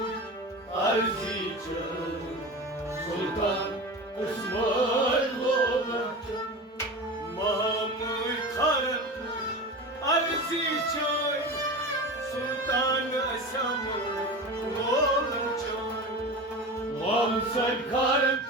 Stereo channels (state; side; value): normal; both; correlation 0.29